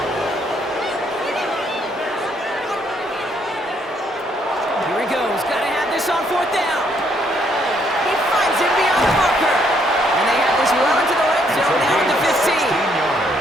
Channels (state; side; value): normal; both; correlation 0.70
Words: Here he goes. Got to have this on 4th down. He finds him beyond the marker. And they have this run to the red zone now at the 15.